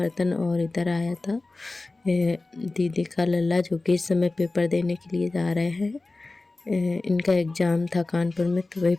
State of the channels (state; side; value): quieter; right; 3.2 dB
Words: और इधर आया था दीदी का लल्ला जो कि इस समय पेपर देने के लिए जा रहे हैं। इनका एग्ज़ाम था कानपुर में, तो वही